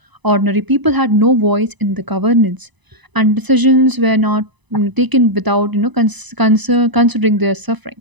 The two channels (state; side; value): late; left; 1.0 ms